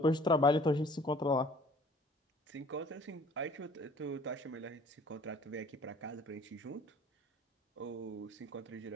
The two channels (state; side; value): normal; both; correlation 0.52